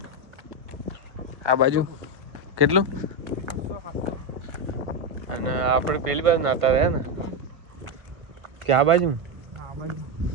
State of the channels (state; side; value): late; left; 1.3 ms